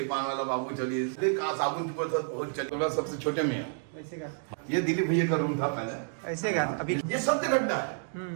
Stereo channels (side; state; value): left; silent; 58 dB below the other